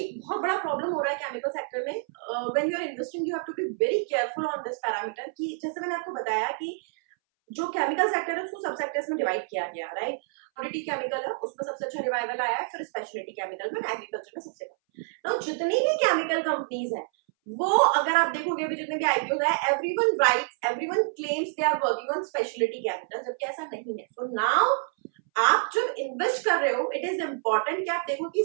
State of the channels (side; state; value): left; silent; 60 dB below the other